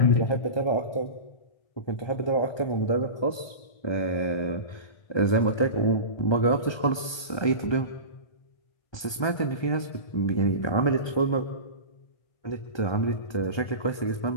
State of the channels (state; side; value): late; right; 1.2 ms